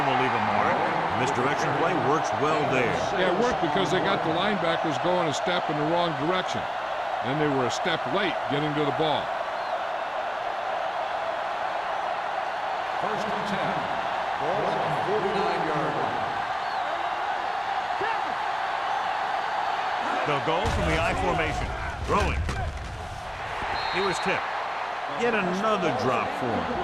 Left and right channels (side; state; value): both; identical; correlation 1.00